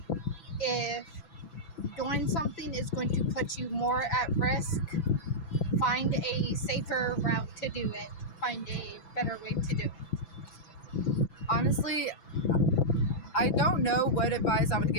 If doing something is going to put you more at risk, find a safer route to do it. Find a better way to do it. Honestly, I don't know what advice I would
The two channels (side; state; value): right; late; 6.0 ms